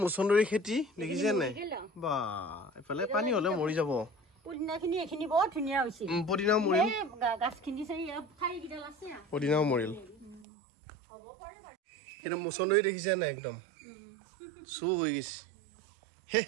মুচন্দৰী খেতি দেখিছে নাই বা এফালে পানী হ'লে মৰি যাব পদিনাখিনি এখিনি বহুত ধুনীয়া হৈছে পদিনাও মৰিল গাছখিনি চাই ঠাৰিকেইডাল আছে পদিনাও মৰিল একদম মুচন্দৰী দেখিছে নাই একদম চু হৈ গৈছে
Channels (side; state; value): left; drops out; at 10.5 s